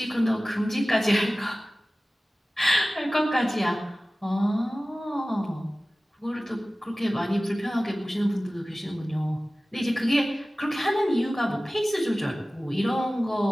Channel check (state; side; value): normal; both; correlation 0.97